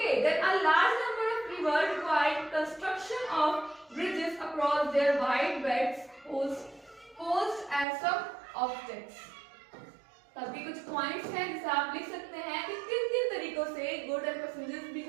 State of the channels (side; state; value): left; drops out; at 7.9 s